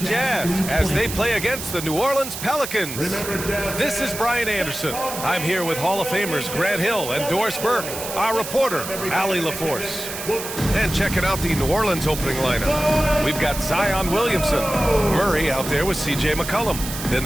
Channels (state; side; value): noise; right; hiss, 8 dB below the sound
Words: as they play against the New Orleans Pelicans. This is Brian Anderson. I'm here with Hall of Famers Grant Hill and Doris Burke, our reporter, Allie LaForce. And checking out the New Orleans opening lineup. We've got Zion Williamson, Murray out there with C.J. McCollum. Then